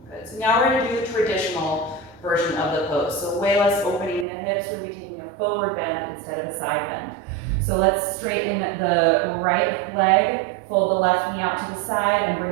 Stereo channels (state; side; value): drops out; left; at 4.2 s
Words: Good, so now we're gonna do the traditional version of the pose. So way less opening in the hips. We're gonna be taking a forward bend instead of a side bend. So let's straighten the right leg, fold the left knee out to the side, and